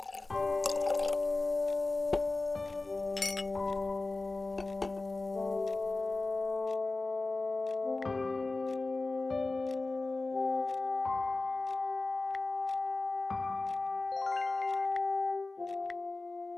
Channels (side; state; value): right; quieter; 3.3 dB